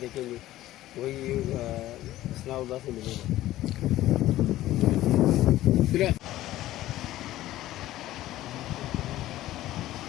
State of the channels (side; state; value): right; quieter; 14.9 dB